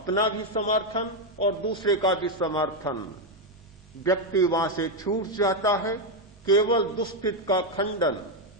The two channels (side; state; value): right; noise; rumble, 28 dB below the sound